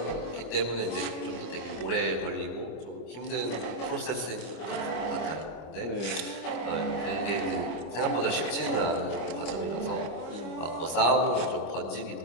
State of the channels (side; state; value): right; late; 25 ms